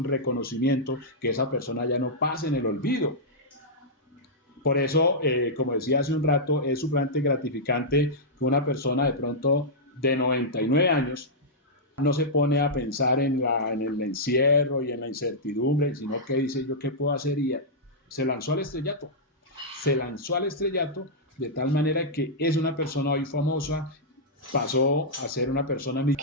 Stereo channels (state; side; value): normal; both; correlation -0.10